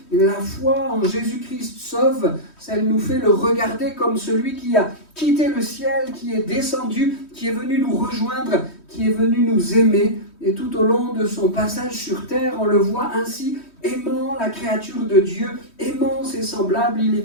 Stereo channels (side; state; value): right; late; 3.1 ms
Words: La foi en Jésus-Christ sauve, elle nous fait le regarder comme celui qui a quitté le ciel, qui est descendu, qui est venu nous rejoindre, qui est venu nous aimer. Et tout au long de son passage sur terre, on le voit ainsi, aimant la créature de Dieu, aimant ses semblables. Il